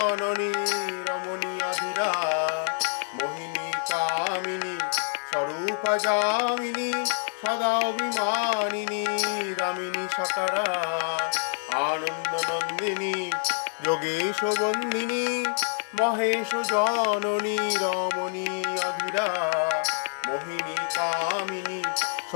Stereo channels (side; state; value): right; silent; 57 dB below the other